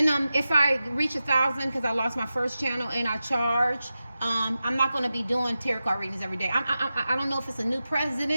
If I reach 1,000, because I lost my first channel and I charge, I'm not going to be doing tarot card readings every day. I don't know if it's a new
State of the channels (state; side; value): inverted; both; correlation -0.93